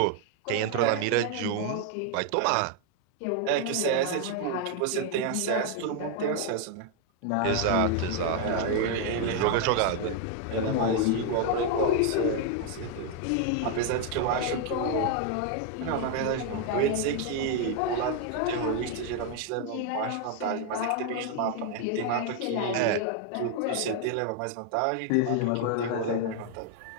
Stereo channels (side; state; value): both; different; correlation 0.00